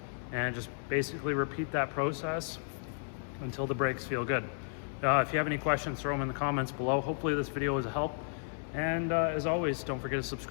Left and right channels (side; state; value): right; silent; 56 dB below the other